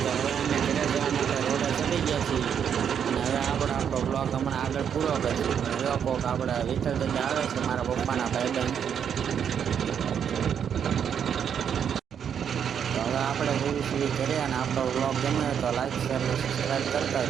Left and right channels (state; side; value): quieter; left; 8.1 dB